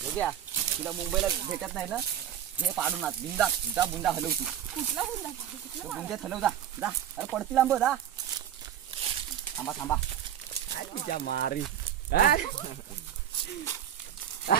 बघूया तुला मुंबईला भेटत नाही ना हे पाडून आत बुंदा जा बुंदा हलव तू कुठला बुंदा बुंद्यात हलव जा अरे पडतील आंब जा थांबा थांबा तुझ्या मारी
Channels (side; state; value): left; quieter; 10.2 dB